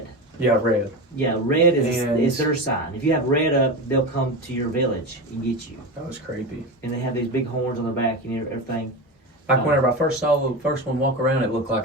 Yeah, red. Yeah, red And- is their sign. If you have red up, they'll come to your village and get you. That was creepy. And they have these big horns on their back and everything. Like whenever I first saw the first one walk around, it looked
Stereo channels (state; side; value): normal; both; correlation 0.22